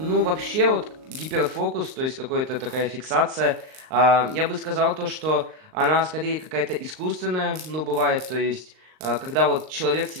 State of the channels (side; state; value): left; late; 38 ms